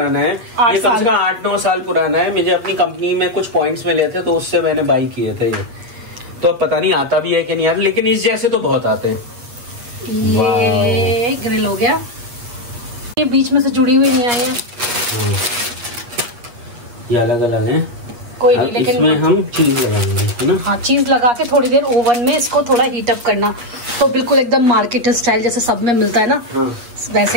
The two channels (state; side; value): late; left; 8.5 ms